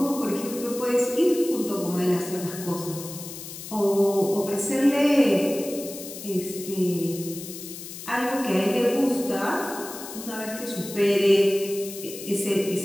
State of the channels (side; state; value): left; noise; hiss, 11 dB below the sound